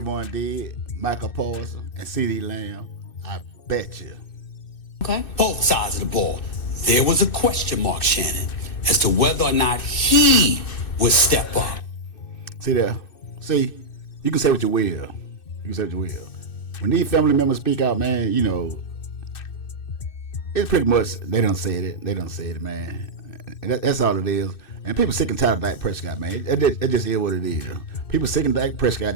did, Michael Parsons, and CeeDee Lamb. I bet you. Okay. Both sides of the ball. There was a question mark, Shannon, as to whether or not he would step up. See there. See, you can say what you will. When these family members speak out, man, it's pretty much they done said it, man. And that's all it is. And people sick and tired of Dak Prescott, man. It just is what it is. People sick of Dak Prescott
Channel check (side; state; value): right; late; 2.6 ms